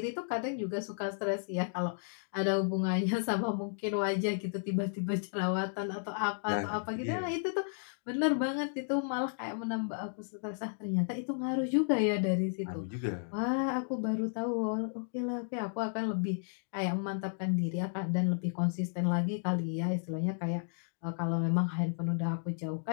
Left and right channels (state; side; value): silent; right; digital silence